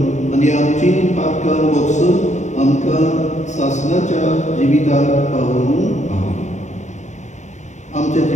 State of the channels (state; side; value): late; right; 0.34 ms